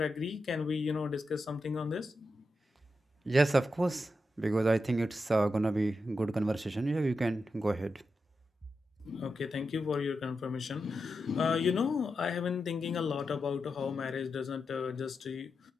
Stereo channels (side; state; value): both; normal; correlation 0.88